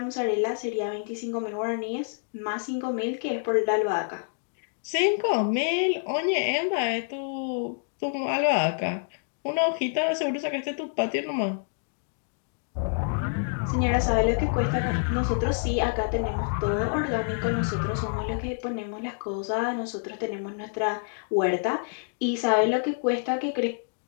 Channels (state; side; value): silent; right; digital silence